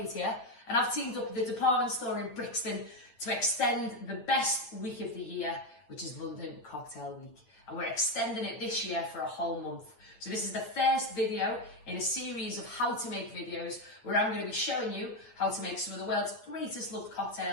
here, and I've teamed up with the department store in Brixton to extend the best week of the year, which is London Cocktail Week. And we're extending it this year for a whole month. So this is the first video in a series of how to make videos where I'm going to be showing you how to make some of the world's greatest loved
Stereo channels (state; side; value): late; right; 8.7 ms